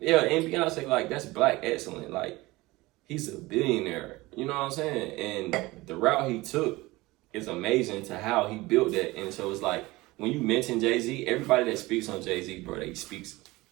and Beyonce, like, that's black excellent. Like, he's a billionaire. You know what I'm saying? And the route he took is amazing to how he built that. And so it's like, when you mention Jay-Z, everybody that speaks on Jay-Z, bro, they speaks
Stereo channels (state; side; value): quieter; left; 20.6 dB